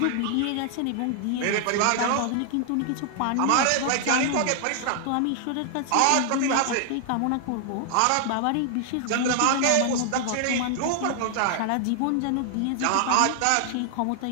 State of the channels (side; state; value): both; different; correlation 0.00